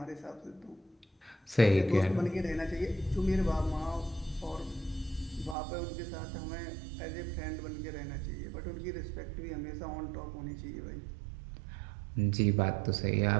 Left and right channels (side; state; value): left; drops out; at 5.6 s